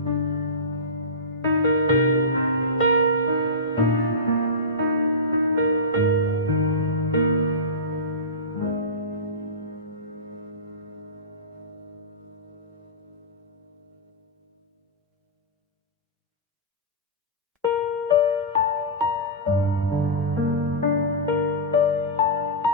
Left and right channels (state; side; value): normal; both; correlation -0.19